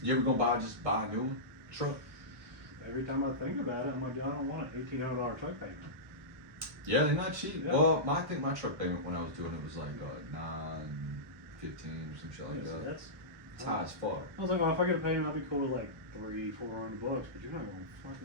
You ever gonna buy a new one? Truck? every time I think about it, I'm like, I don't want an $1,800 truck payment. Yeah, they're not cheap. Yeah. Well, I think my truck payment when I was doing it was like $9.15 or some shit like Yeah, so that. that's. It's high as fuck. I was like, well, if I get a payment, I'd be cool with like $300-400, but you're not gonna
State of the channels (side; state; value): left; late; 1.1 ms